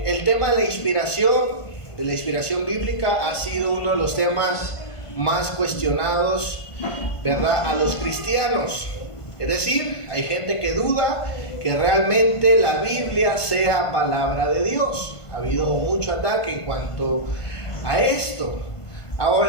tema de la inspiración bíblica ha sido uno de los temas más cuestionados, ¿verdad?, a los cristianos. Es decir, hay gente que duda que realmente la Biblia sea palabra de Dios. Ha habido mucho ataque en cuanto a esto.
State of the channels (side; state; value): right; late; 1.5 ms